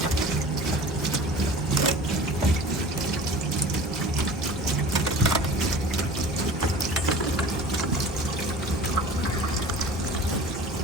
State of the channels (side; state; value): both; normal; correlation 0.41